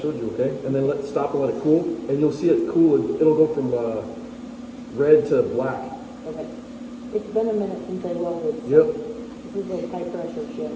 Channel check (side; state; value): both; identical; correlation 1.00